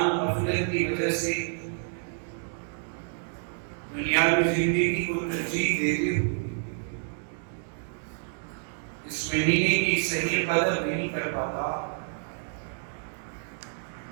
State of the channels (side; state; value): left; silent; 59 dB below the other